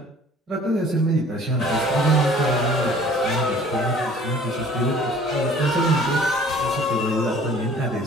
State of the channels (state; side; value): normal; both; correlation 0.51